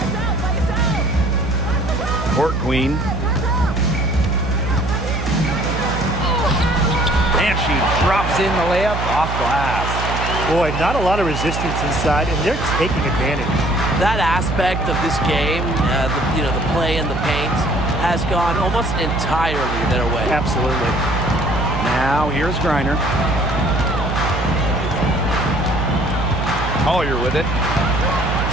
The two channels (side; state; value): right; noise; hum, 4 dB below the sound